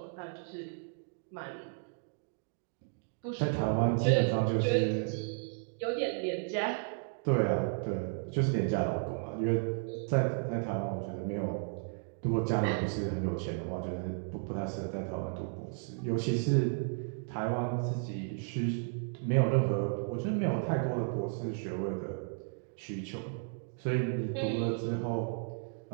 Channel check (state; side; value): silent; left; 55 dB below the other